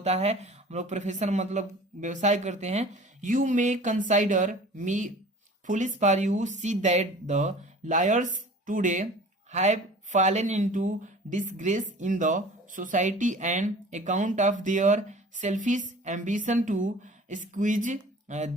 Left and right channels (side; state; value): both; normal; correlation 0.44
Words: है, हम लोग प्रोफेशन मतलब व्यवसाय करते हैं। You may consider me foolish for you see that the lawyers today have fallen into disgrace in the society and account of their selfish ambition to squeeze